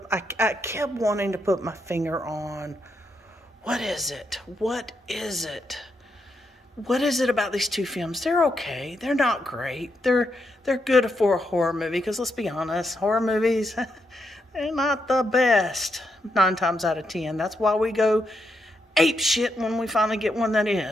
wanting to put my finger on, what is it? What is it? What is it about these two films? They're okay. They're not great. They're good for a horror movie, because let's be honest, horror movies, they're not the best 9 times out of 10. That's why we go ape shit when we finally get one that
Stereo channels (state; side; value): normal; both; correlation 0.81